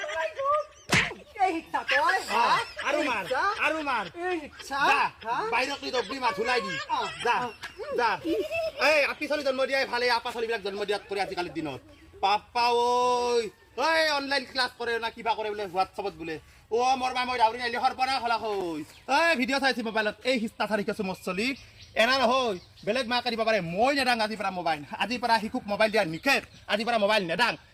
এই হিচ্ছা তই আৰু মাৰ এই হিচ্ছা বাইৰক নি দবলি মাৰ ধুলাই দি যা এই আপি চলি জন্ম দিয়াই ভালে আপা চলিবিলাক জন্ম দিয়াত কৰি আজিকালিৰ দিনত পাপা ঐ অনলাইন ক্লাছ কৰে না কিবা কৰে বোলে হোৱাটছআপত বোলে ও মোৰ মাই মই দাউৰি নাইলি সৰ্বনা খলা হৈ ভিডিঅ' চাইছি মোবাইলত এই হিস্তা থাৰি কৈছো মোৰ চলি এনা নহয় বেলেগ মাকে দিব পাৰে মই নেদাং আজিৰ পৰা মোবাইল আজিৰ পৰা শিশুক মোবাইল দিয়া নিষেধ আজিৰ পৰা মোবাইল নেদাং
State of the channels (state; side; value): identical; both; correlation 1.00